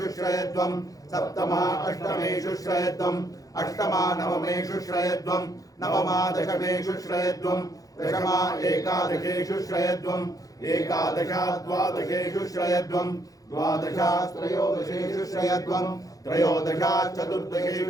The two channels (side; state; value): right; late; 0.17 ms